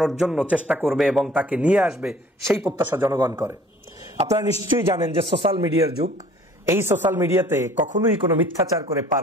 জন্য চেষ্টা করবে এবং তাকে নিয়ে আসবে, সেই প্রত্যাশা জনগণ করে। আপনারা নিশ্চয়ই জানেন যে সোশ্যাল মিডিয়ার যুগ, এই সোশ্যাল মিডিয়াতে কখনোই কোনো মিথ্যাচার করে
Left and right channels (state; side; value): normal; both; correlation 0.52